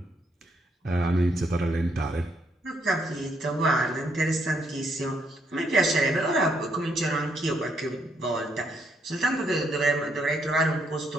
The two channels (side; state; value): both; normal; correlation 0.74